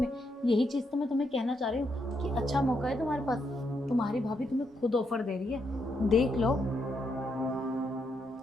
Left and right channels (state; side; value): normal; both; correlation 0.79